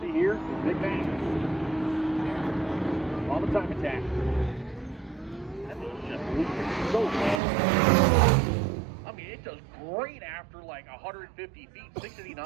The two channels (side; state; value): left; drops out; at 7.4 s